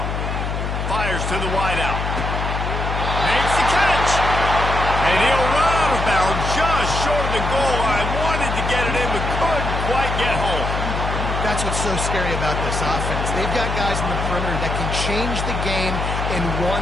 Fires to the wideout. Makes the catch. And he'll run out of bounds just short of the goal line. Wanted to get it in, but couldn't quite get home. That's what's so scary about this offense. They've got guys in the perimeter that can change the game in one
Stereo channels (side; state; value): left; noise; hum, 2 dB below the sound